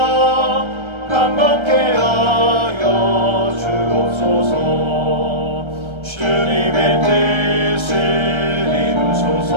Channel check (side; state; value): left; late; 1.3 ms